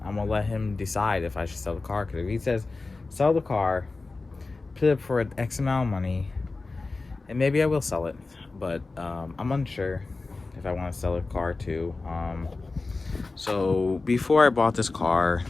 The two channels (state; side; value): quieter; right; 3.6 dB